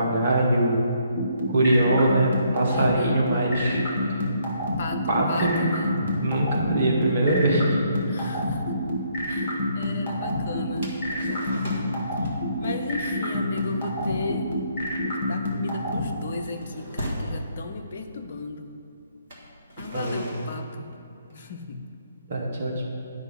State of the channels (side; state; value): both; inverted; correlation -0.70